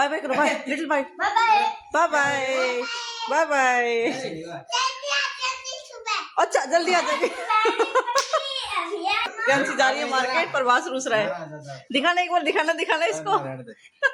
bye करो, bye little, bye bye bye bye bye. अच्छा जल्दी आ जाएगी। कैंसी जा रही है मार्केट, प्रभास रूस रहा है। दिखाना एक बार, दिखाना दिखाना इसको।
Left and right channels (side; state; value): both; identical; correlation 1.00